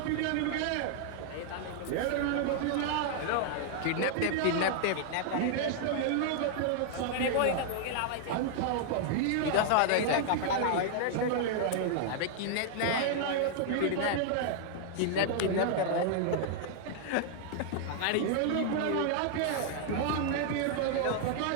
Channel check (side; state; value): both; different; correlation 0.00